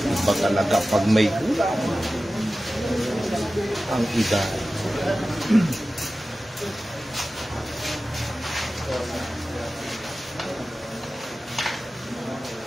Iba talaga pag may gulang ang edad.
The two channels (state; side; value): normal; both; correlation 0.95